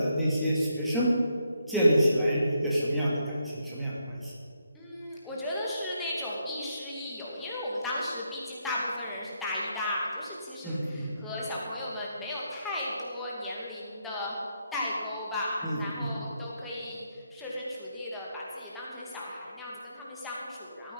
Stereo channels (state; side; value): inverted; both; correlation -0.78